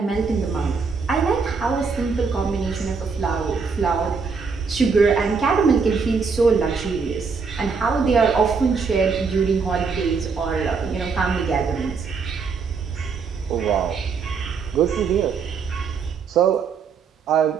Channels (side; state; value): left; quieter; 5.2 dB